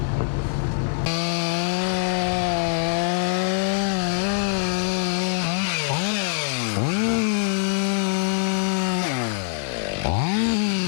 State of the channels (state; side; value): silent; right; digital silence